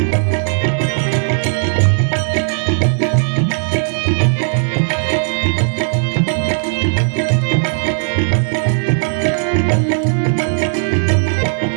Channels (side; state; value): left; silent; 59 dB below the other